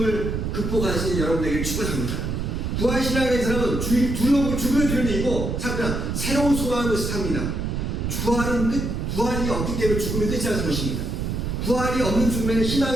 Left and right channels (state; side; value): noise; right; rumble, 2 dB below the sound